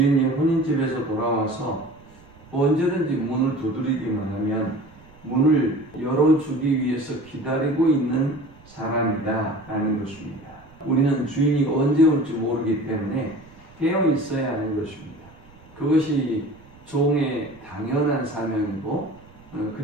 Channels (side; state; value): right; noise; rumble, 25 dB below the sound